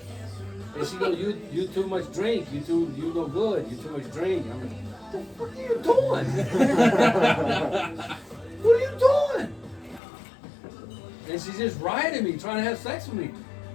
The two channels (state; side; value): drops out; right; at 10.0 s